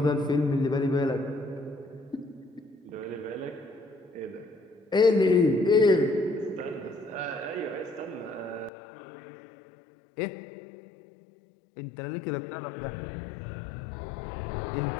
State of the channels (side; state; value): right; drops out; at 8.7 s